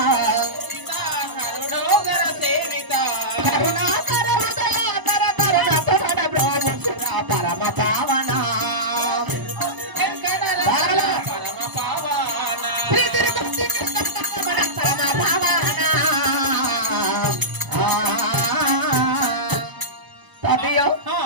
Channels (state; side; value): late; left; 1.0 ms